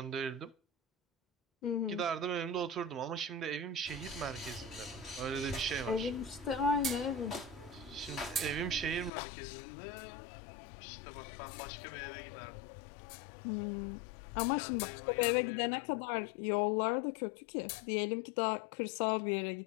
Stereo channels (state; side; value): drops out; right; at 9.1 s